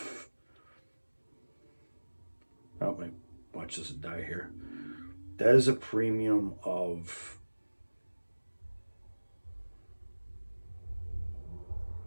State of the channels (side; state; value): both; inverted; correlation -1.00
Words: oh my, watch this die here. That is a premium of